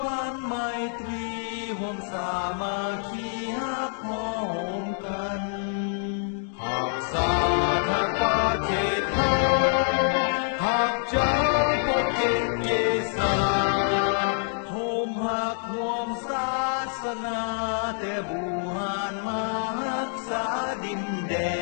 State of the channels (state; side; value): silent; right; digital silence